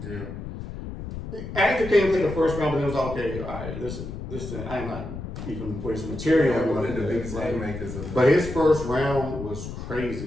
Yeah. Active came to the first round, but it was okay. All right, this thing, I'm not even putting some material on the biggest makers of but his first round was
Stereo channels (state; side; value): noise; left; rumble, 8 dB below the sound